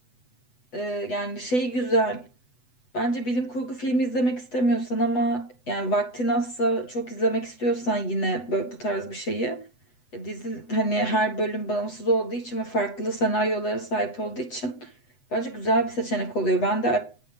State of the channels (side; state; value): right; late; 8.0 ms